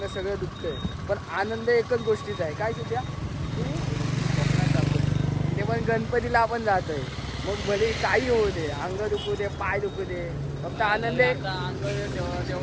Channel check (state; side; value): identical; both; correlation 1.00